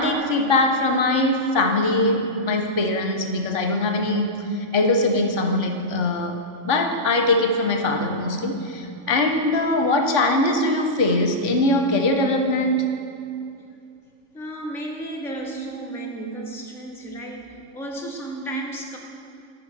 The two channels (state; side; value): late; left; 3.5 ms